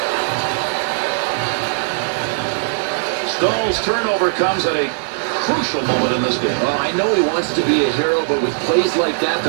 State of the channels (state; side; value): silent; left; digital silence